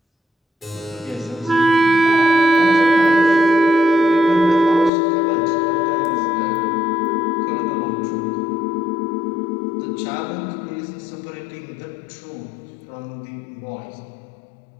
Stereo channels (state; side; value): drops out; right; at 4.9 s